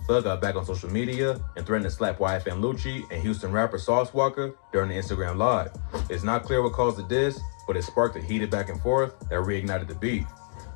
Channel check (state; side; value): silent; right; digital silence